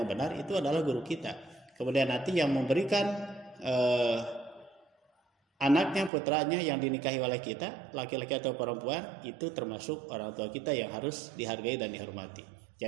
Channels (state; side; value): drops out; left; at 6.1 s